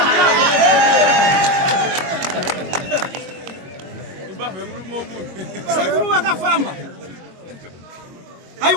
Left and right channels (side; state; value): left; late; 21 ms